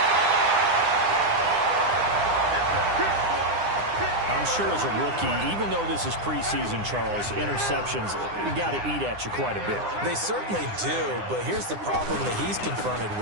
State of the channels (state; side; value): late; left; 9.8 ms